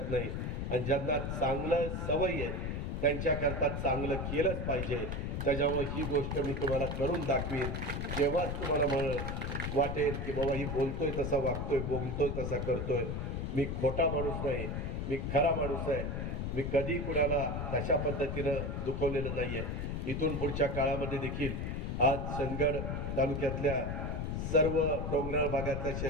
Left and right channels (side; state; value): left; noise; rumble, 2 dB below the sound